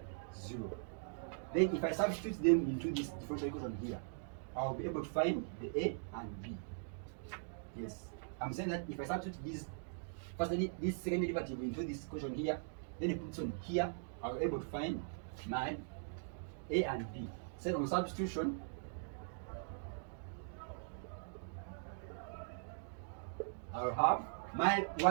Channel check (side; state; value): left; silent; digital silence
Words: 0. Then if I substitute them into this differential equation here, I will be able to find the a and b. Yes, I'm saying that if I substitute this second derivative into this equation here, then it puts on here, I'll be able to find my a and b. So on substitution, I'll have my